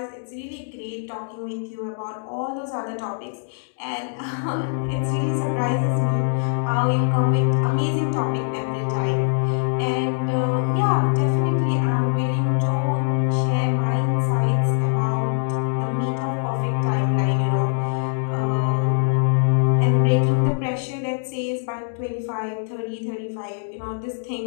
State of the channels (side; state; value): right; silent; digital silence